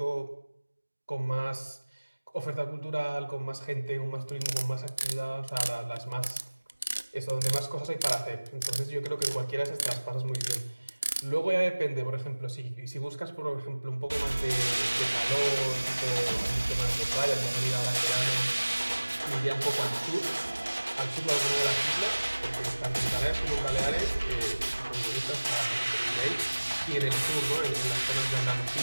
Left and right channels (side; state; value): both; inverted; correlation -1.00